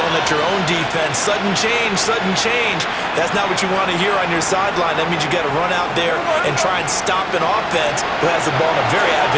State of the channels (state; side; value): identical; both; correlation 1.00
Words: yelling at your own defense. Sudden change, sudden change. That's not what you want to hear on your sideline. That means you got to run out there and try and stop an offense who has the ball in a very